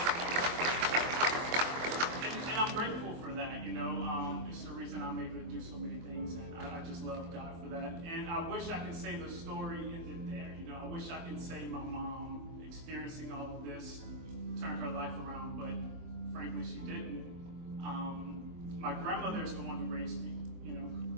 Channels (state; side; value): late; left; 24 ms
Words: And I'm grateful for that. It's the reason I'm able to do so many things, and I just love God for that. And I wish I could say the story ended there. I wish I could say my mom experiencing all of this turned her life around, but frankly, she didn't. My grandmother is the one who raised me.